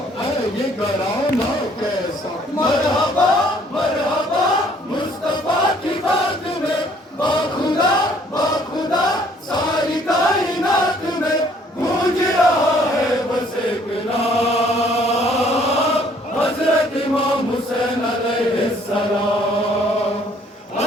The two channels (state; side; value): normal; both; correlation 0.61